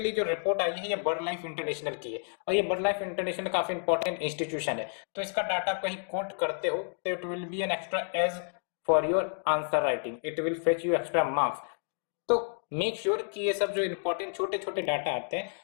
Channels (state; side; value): silent; right; 58 dB below the other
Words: जो रिपोर्ट आई है ये बर्ड लाइफ इंटरनेशनल की है और ये बर्ड लाइफ इंटरनेशनल काफी इंपॉर्टेंट इंस्टीट्यूशन है। तो इसका डाटा कहीं कोट करते हो तो it will be an extra edge for your answer writing, it will fetch you extra marks. तो मेक श्योर कि ये सब जो इंपॉर्टेंट छोटे छोटे डाटा आते हैं